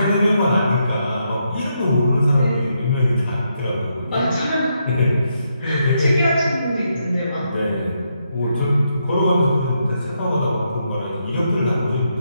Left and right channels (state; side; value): inverted; both; correlation -0.80